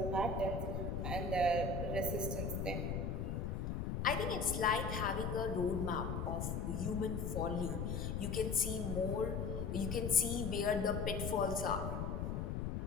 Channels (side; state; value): left; noise; rumble, 1 dB below the sound